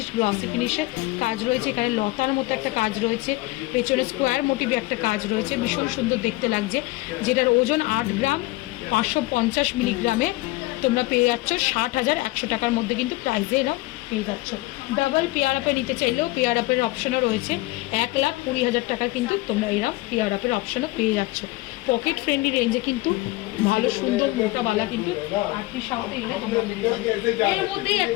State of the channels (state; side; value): quieter; right; 20.6 dB